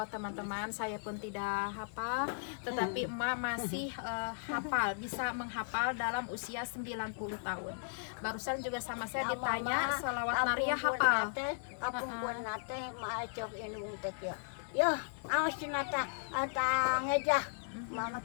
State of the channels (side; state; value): right; silent; digital silence